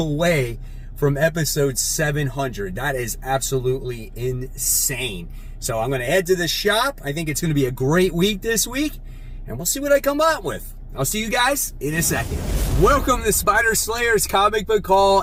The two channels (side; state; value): both; identical; correlation 1.00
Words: from episode 700. That is absolutely insane. So I'm going to head to the shop. I think it's going to be a great week this week, and we'll see what I come up with. I'll see you guys in a second. Welcome to Spider Slayer's Comic Book